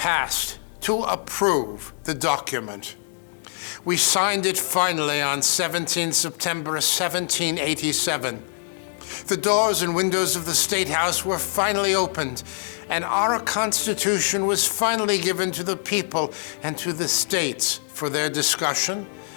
to approve the document. We signed it finally on 17 September 1787. The doors and windows of the State House were finally opened, and our Constitution was finally given to the people and to the states for their discussion,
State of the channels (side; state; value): right; silent; digital silence